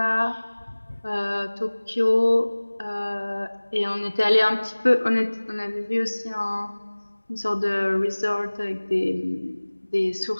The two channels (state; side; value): inverted; both; correlation -1.00